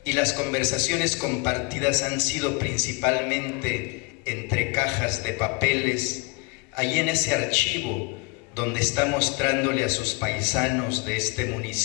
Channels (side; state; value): right; quieter; 29.2 dB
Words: y las conversaciones compartidas han sido principalmente entre cajas de papeles, allí en ese archivo donde está mostrándole a sus paisanos de este